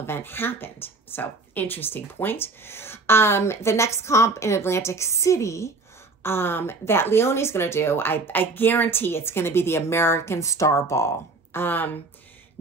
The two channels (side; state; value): left; quieter; 3.6 dB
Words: event happened. So interesting point. The next comp in Atlantic City that Leonie's going to do, I guarantee it's going to be the American Star Ball. None